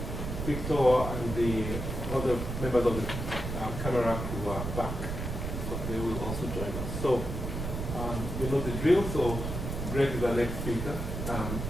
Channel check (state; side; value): noise; right; rumble, 4 dB below the sound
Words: Victor and the other members of the camera who are back, so they will also join us. So you know the drill, so Greg is our next speaker.